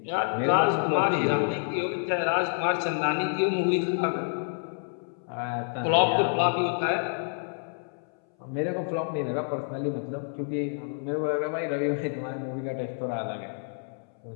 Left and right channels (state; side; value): silent; right; 59 dB below the other